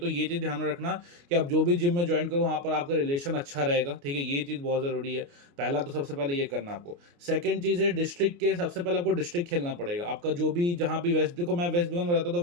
ये चीज़ ध्यान में रखना कि आप जो भी जिम में ज्वाइन करो वहाँ पर आपका रिलेशन अच्छा रहेगा। ठीक है, ये चीज़ बहुत ज़रूरी है। पहला तो सबसे पहले ये करना आपको। सेकंड चीज़ है डिस्ट्रिक्ट के, सबसे पहले आपको डिस्ट्रिक्ट खेलना पड़ेगा। आपका जो भी जहाँ भी वेस्ट, देखो मैं वेस्ट बंगाल में रहता हूँ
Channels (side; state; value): left; late; 29 ms